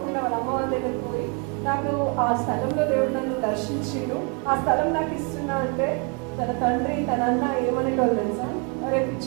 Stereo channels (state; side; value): quieter; left; 35.6 dB